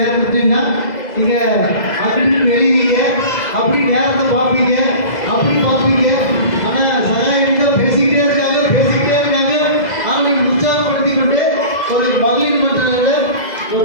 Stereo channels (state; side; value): late; right; 2.0 ms